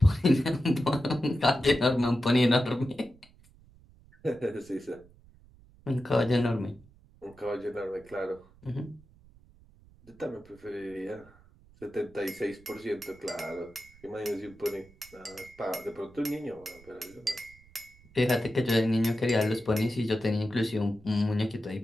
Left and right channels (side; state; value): right; noise; rumble, 26 dB below the sound